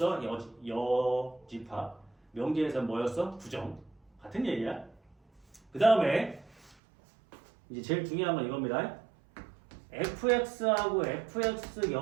여집합. 명제에서는 뭐였어? 부정. 같은 얘기야. 그 다음에 이제 제일 중요한 건 이겁니다. fx하고 fx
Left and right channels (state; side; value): drops out; left; at 6.8 s